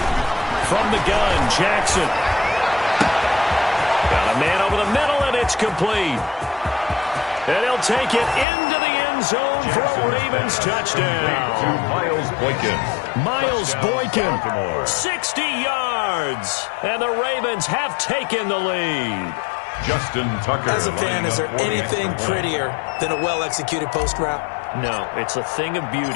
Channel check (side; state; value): right; drops out; at 8.5 s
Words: From the gun, Jackson. Got a man over the middle, and it's complete. And he'll take it into the end zone for a Ravens touchdown. Miles Boykin. Miles Boykin, 60 yards. And the Ravens have taken the lead. Justin Tucker. As a fan, is there anything prettier than a well-executed post route? No, it's a thing of